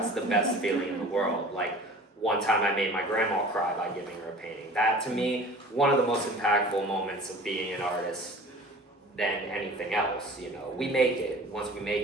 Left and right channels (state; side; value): normal; both; correlation 0.43